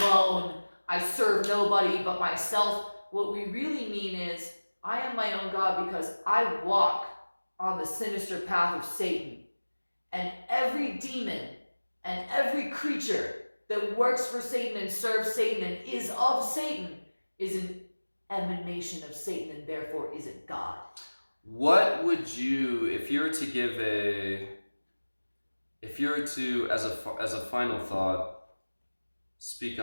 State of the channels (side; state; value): both; inverted; correlation -1.00